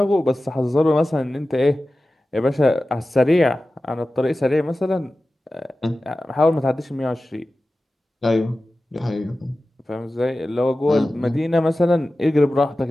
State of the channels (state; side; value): normal; both; correlation 0.95